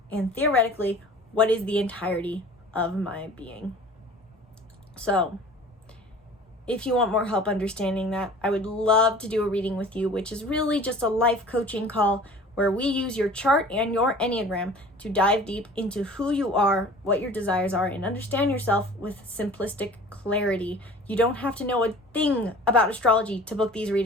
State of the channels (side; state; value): both; normal; correlation 0.45